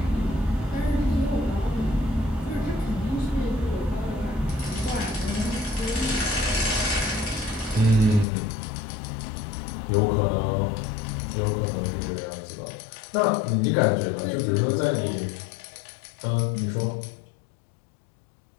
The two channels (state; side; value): drops out; right; at 8.2 s